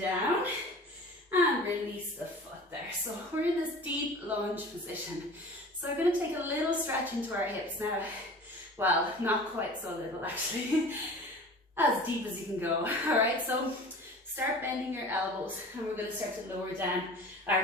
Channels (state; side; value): normal; both; correlation 0.41